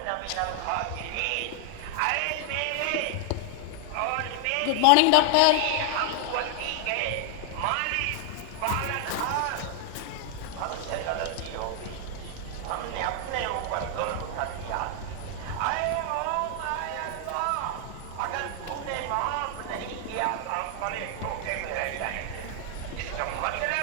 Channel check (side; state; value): both; different; correlation 0.00